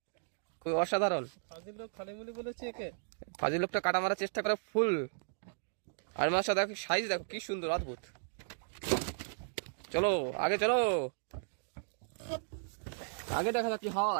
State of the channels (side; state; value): left; silent; digital silence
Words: খুবই অসাধারণ। ফাজিল লোক খালি মুলি বলেছে একে। ফাজিল লোকটা কাটা মারার চেষ্টা করে ফুল। আর মাছটা দেখো সাইজ দেখো কি সুন্দর, অদ্ভুত। চলো আগে চলো, আগে দেখা যাক কি